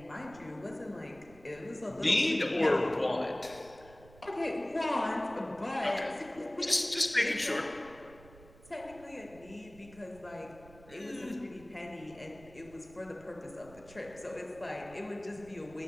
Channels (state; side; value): noise; right; rumble, 21 dB below the sound